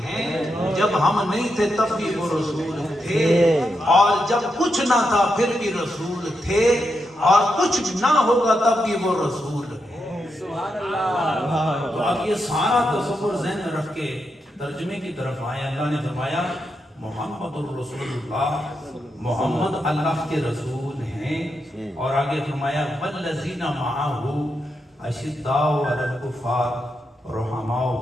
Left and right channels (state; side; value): normal; both; correlation 0.84